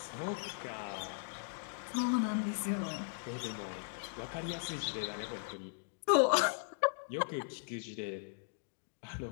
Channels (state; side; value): silent; right; digital silence